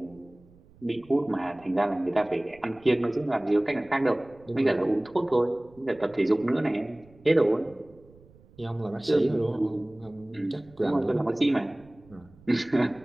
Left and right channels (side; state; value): right; noise; rumble, 26 dB below the sound